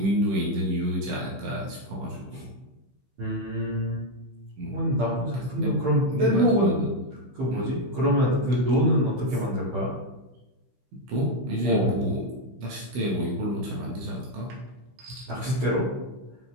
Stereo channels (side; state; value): left; late; 16 ms